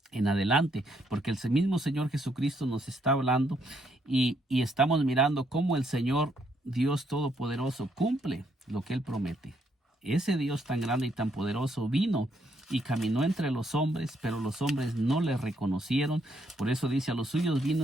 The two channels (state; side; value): normal; both; correlation 0.73